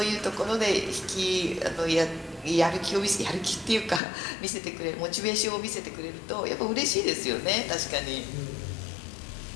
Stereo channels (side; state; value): right; drops out; at 4.0 s